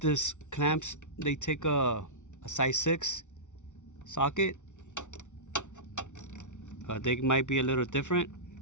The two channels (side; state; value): right; late; 0.85 ms